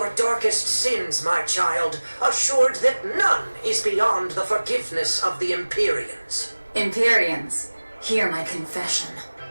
darkest sins, my child, assured that none is beyond the forgiveness of the Empyreans. Empyreans, hear my confession.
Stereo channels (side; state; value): both; inverted; correlation -1.00